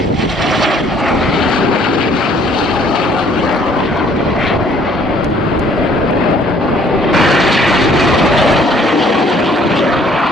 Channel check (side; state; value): both; normal; correlation 0.60